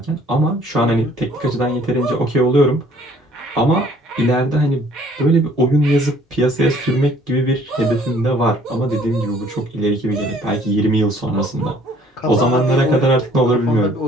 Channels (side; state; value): both; normal; correlation 0.57